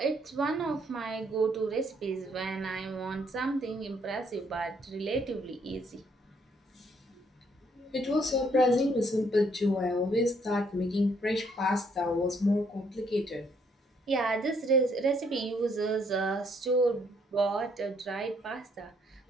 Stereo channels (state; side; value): normal; both; correlation 0.69